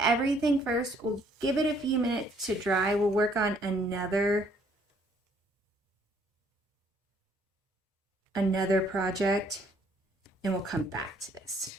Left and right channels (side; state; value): both; normal; correlation 0.64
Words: first. We'll give it a few minutes to dry. We'll work on another project and we'll come back to this.